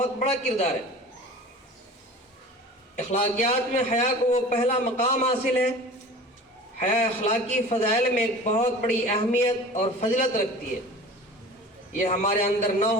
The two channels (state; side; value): normal; both; correlation 0.39